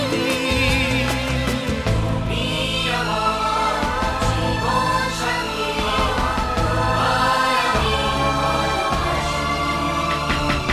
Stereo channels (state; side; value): identical; both; correlation 1.00